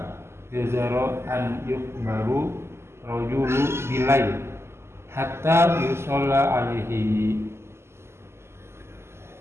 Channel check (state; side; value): late; left; 0.12 ms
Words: jazara an yukbaru rajulu bilail hatta yusalla alaihi.